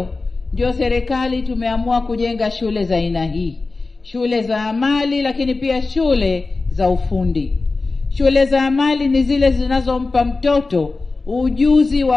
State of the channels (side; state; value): right; quieter; 3.7 dB